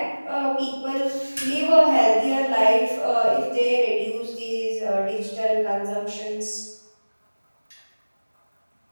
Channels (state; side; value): inverted; both; correlation -1.00